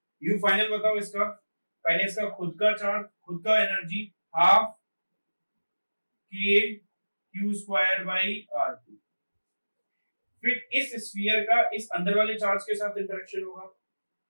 यू फाइनल बताओ इसका, पहले इसका खुद का चार्ज, खुद का एनर्जी हाफ के Q square by R two, फिर इस स्फीयर का इस अंदर वाले चार्ज के साथ इंटरेक्शन होगा,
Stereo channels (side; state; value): both; inverted; correlation -1.00